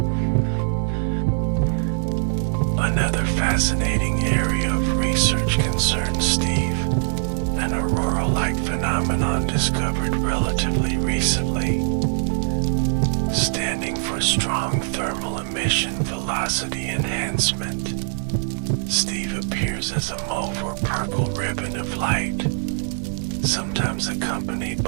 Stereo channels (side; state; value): left; silent; digital silence